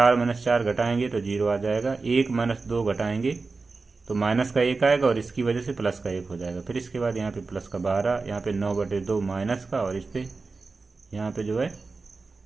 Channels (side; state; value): left; quieter; 4.0 dB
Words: माइनस 4 घटाएंगे तो 0 आ जाएगा, 1 माइनस 2 घटाएंगे तो माइनस का 1 आएगा, और इसकी वजह से प्लस का 1 हो जाएगा। फिर इसके बाद यहाँ पे प्लस का 12, यहाँ पे 9/2 माइनस का, और इस पे यहाँ पे जो है